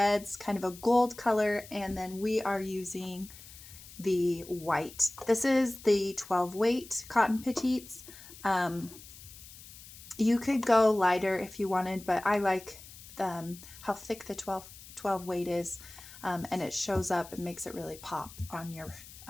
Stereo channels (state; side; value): noise; left; hiss, 17 dB below the sound